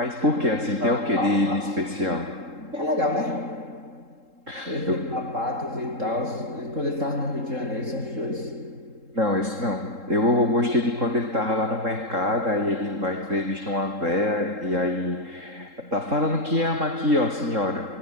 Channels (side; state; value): left; late; 3.7 ms